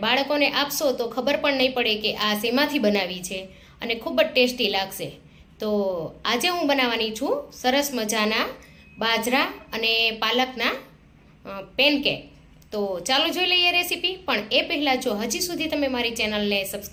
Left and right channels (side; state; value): both; identical; correlation 1.00